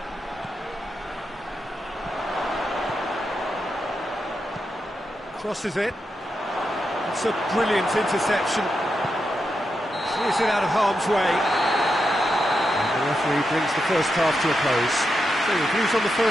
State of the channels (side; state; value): both; normal; correlation 0.86